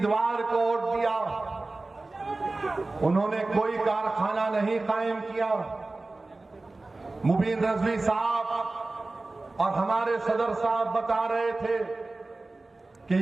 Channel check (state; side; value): quieter; left; 3.2 dB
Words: को वोट दिया। उन्होंने कोई कारखाना नहीं कायम किया। मुबीन रजवी साहब और हमारे सदर साहब बता रहे थे कि